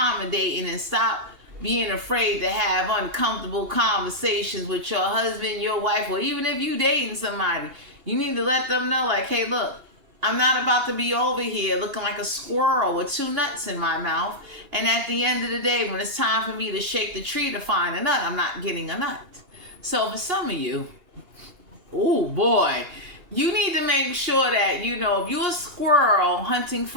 and stop being afraid to have uncomfortable conversations with your husband, your wife, or even if you dating somebody. You need to let them know, like, hey, look, I'm not about to be over here looking like a squirrel with 2 nuts in my mouth. And at the end of the day, when it's time for me to shake the tree to find a nut, I'm not getting a nut. So for some of you, oh boy, you need to make sure that, if you're a squirrel hunting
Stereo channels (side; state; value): left; late; 2.8 ms